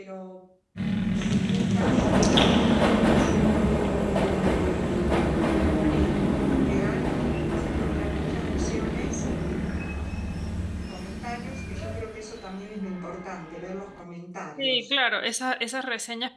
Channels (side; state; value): both; identical; correlation 1.00